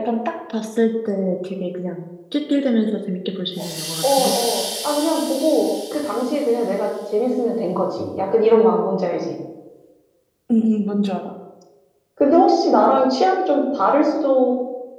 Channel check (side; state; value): both; identical; correlation 1.00